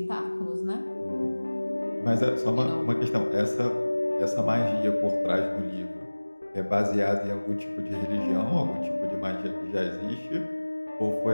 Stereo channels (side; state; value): both; inverted; correlation -1.00